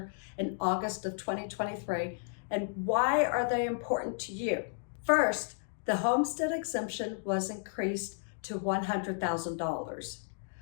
in August of 2023, and why are they important to you? First, the homestead exemption was increased to $100,000.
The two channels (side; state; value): right; silent; digital silence